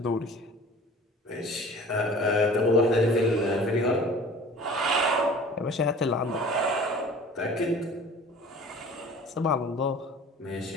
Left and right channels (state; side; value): normal; both; correlation 0.44